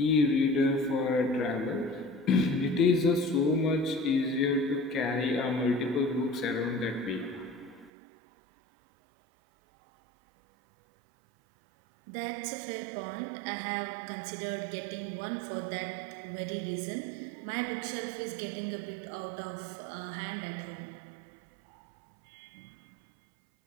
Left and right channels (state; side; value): drops out; left; at 7.9 s